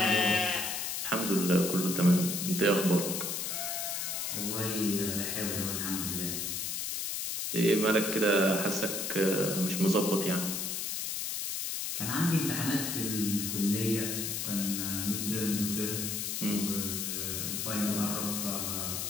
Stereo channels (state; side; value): noise; left; hiss, 2 dB below the sound